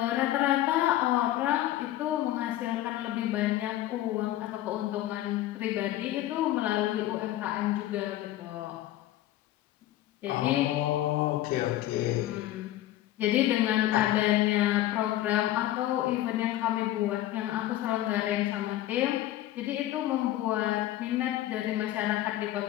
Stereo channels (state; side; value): quieter; right; 14.4 dB